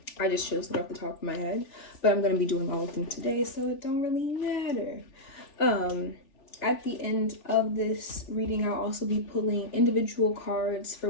I just chose it off the top of my head, but I'm gonna be doing all of them today, so it don't really matter. At the end of this reading, I'll also be pulling individual cards for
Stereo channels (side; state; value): right; late; 3.4 ms